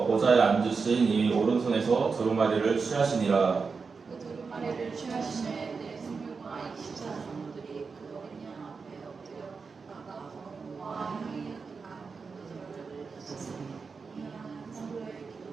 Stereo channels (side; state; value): left; quieter; 5.0 dB